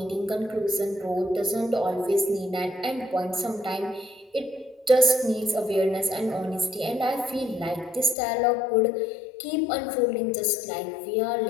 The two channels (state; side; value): drops out; right; at 8.2 s